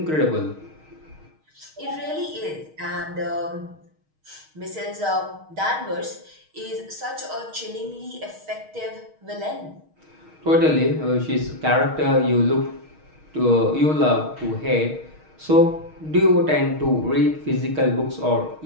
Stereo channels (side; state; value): left; late; 6.4 ms